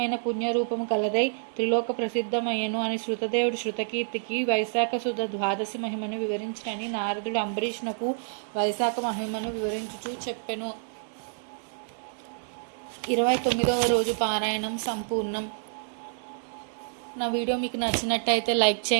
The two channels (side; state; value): left; silent; digital silence